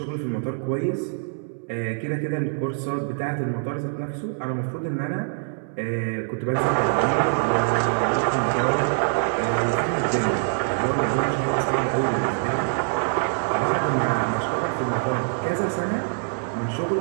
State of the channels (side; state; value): left; silent; 62 dB below the other